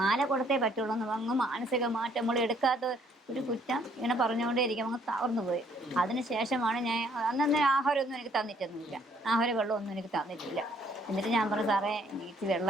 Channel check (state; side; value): normal; both; correlation 0.65